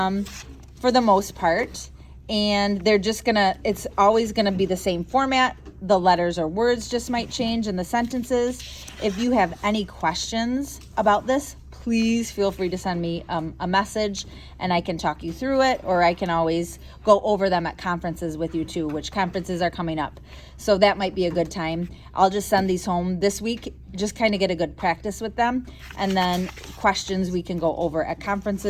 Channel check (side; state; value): both; identical; correlation 1.00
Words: the most part. And they're just it's always gonna be the same format. The letters or words just might change in the sentences. If you have any questions about this, please feel free to send me a message and I can talk you through it, or I can always go over them at conferences with you too, which conferences are coming up. So that might be a good time. I'll just send these home this week, just kind of get a good practice with them. And then questions we can go over at